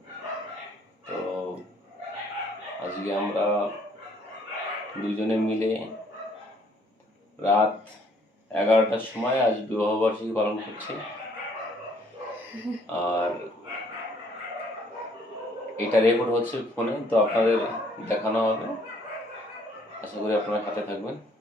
তো আজকে আমরা দুজনে মিলে রাত 11টার সময় আজ বিবাহবার্ষিকী পালন করছি। আর এটা রেকর্ড হচ্ছে ফোনে, তো আপনাদের দেখানো হবে। আশা করি আপনারা সাথে থাকবেন।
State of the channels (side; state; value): both; normal; correlation 0.63